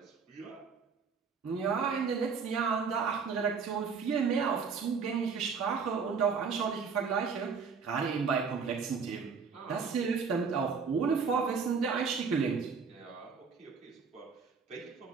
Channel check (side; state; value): left; quieter; 5.6 dB